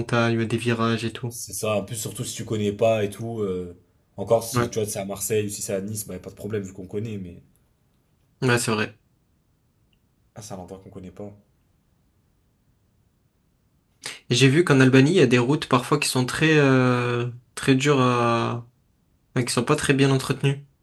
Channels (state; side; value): identical; both; correlation 1.00